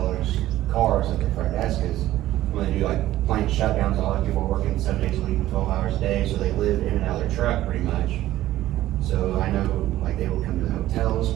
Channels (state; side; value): quieter; left; 14.5 dB